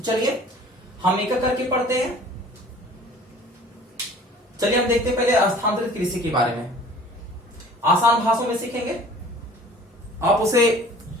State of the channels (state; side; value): normal; both; correlation 0.48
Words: चलिए हम एक करके पढ़ते हैं। चलिए हम देखते हैं पहले स्थानांतरित कृषि के बारे में। आसान भाषाओं में सीखेंगे, आप उसे